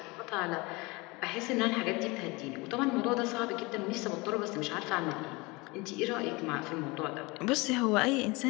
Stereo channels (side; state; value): right; quieter; 24.9 dB